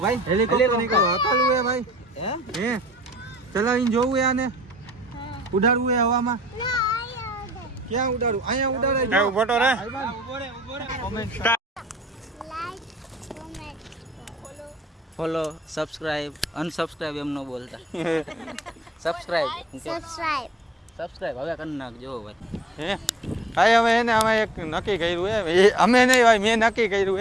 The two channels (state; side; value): normal; both; correlation 0.60